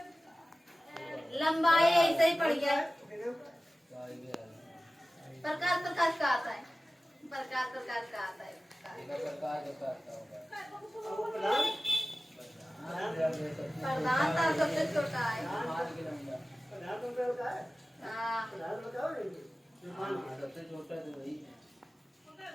लंबाई ऐसे ही पड़ी है। प्रकार प्रकार का आता है, प्रकार प्रकार का आता है। प्रधान था सबसे छोटा है। हाँ सबसे छोटा तो वही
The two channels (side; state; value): both; normal; correlation 0.96